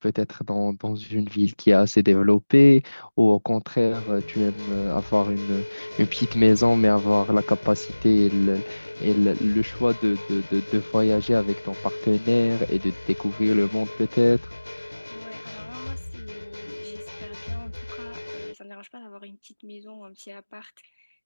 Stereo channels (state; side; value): inverted; both; correlation -1.00